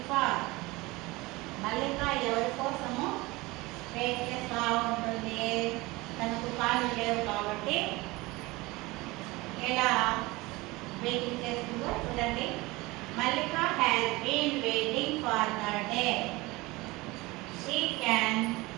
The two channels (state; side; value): quieter; left; 21.9 dB